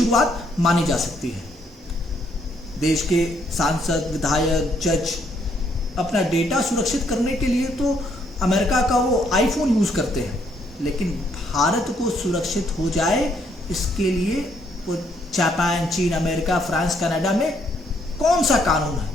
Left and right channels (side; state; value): both; normal; correlation 0.70